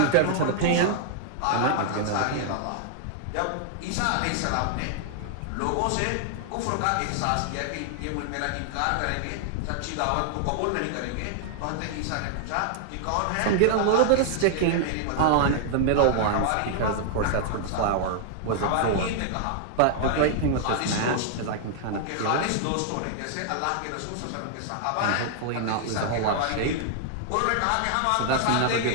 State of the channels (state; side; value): different; both; correlation -0.01